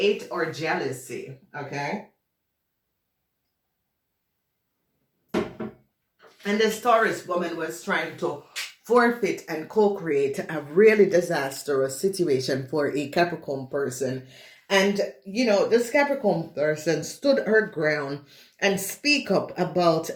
or jealousy? Okay. And this Taurus woman was trying to forfeit and co-create a really disastrous situation for a Capricorn person. And, this Capricorn person stood her ground and speak up about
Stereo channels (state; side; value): identical; both; correlation 1.00